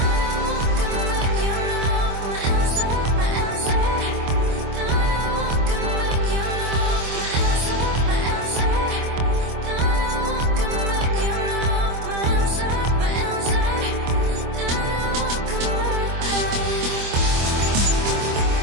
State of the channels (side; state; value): left; late; 25 ms